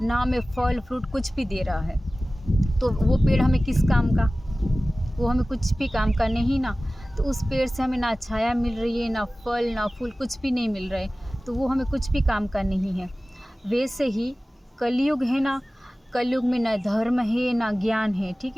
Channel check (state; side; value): normal; both; correlation 0.97